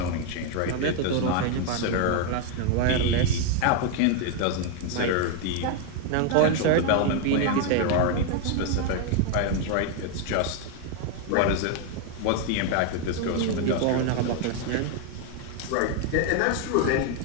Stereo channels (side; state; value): both; different; correlation 0.01